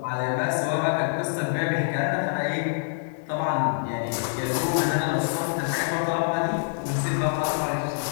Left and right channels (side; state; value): right; silent; 56 dB below the other